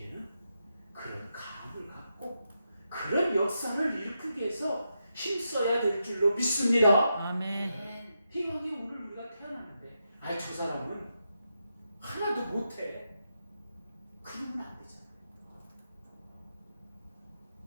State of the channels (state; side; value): inverted; both; correlation -0.85